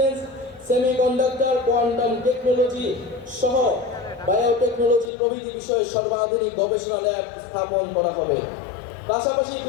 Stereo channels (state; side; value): drops out; right; at 5.1 s